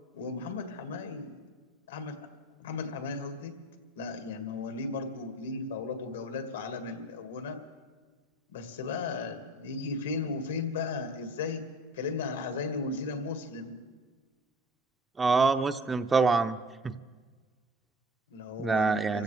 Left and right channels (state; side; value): normal; both; correlation 0.44